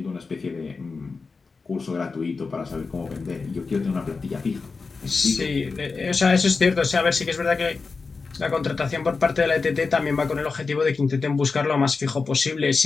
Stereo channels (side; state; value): right; quieter; 4.4 dB